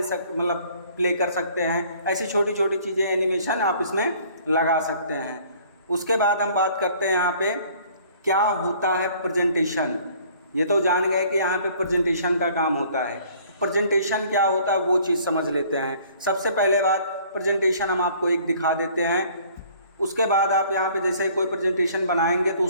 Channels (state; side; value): inverted; both; correlation -0.55